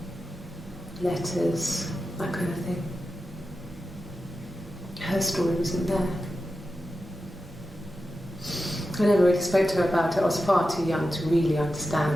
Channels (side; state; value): both; normal; correlation 0.91